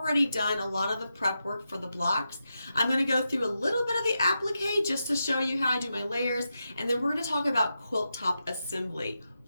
done a lot of the prep work for the blocks. I'm going to go through a little bit of the applique just to show you how I do my layers, and then we're going to talk about quilt top assembly.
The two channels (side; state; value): both; inverted; correlation -0.88